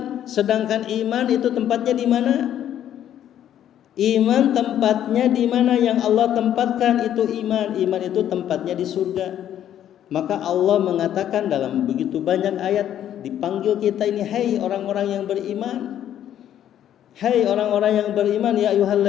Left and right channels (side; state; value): right; quieter; 10.8 dB